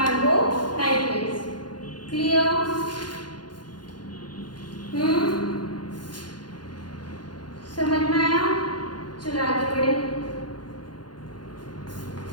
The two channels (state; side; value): late; right; 0.71 ms